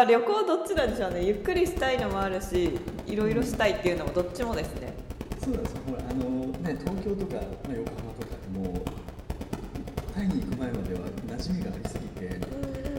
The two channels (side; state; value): both; identical; correlation 1.00